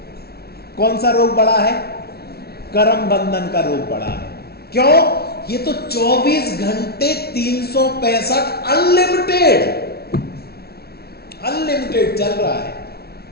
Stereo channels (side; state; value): right; late; 0.45 ms